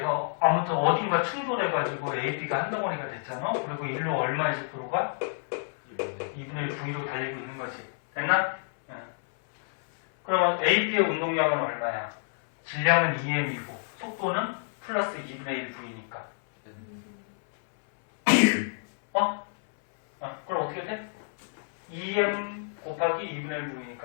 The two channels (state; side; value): silent; right; 59 dB below the other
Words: 아무튼 어딘가 충돌해가지고 AB가 한 덩어리가 됐잖아. 그리고 일로 얼마의 속도로가? 2분의 1 V로 달리고 있는 거지. 됐나? 네. 그러면 AB의 운동량은 얼마야? 질량은 2m이고 속도는 플러스 2분의 1 V니까. 그럼 어떻게 돼? 2m 곱하기 2분의 1